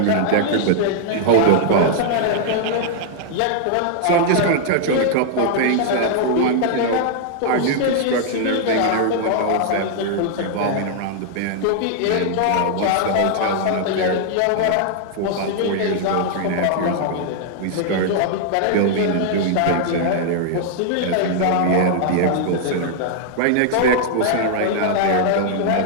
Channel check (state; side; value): different; both; correlation -0.01